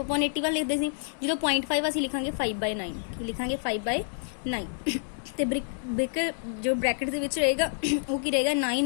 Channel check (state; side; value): silent; right; digital silence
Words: लिखदे सी, जो 0.5 असीं लिखांगे 5/9 की लिखांगे 5/9 ते ब्रैकेट जो ब्रैकेट दे विच रहेगा वो की रहेगा 9